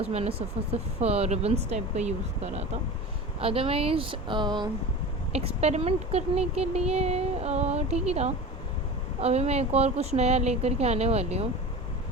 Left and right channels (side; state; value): both; normal; correlation 0.32